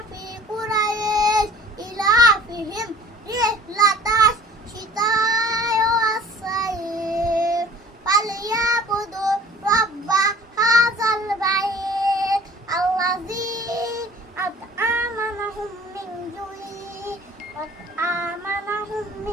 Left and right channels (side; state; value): both; normal; correlation 0.49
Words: কুরাইশ ইলাফিহিম রিহলাতাশ শিতা'i ওয়াস-সাইফ ফালইয়াবুদু রাব্বা হাযাল বাইত আল্লাযী আত'আমানাহুম মিন জু'in ওয়া আমানাহুম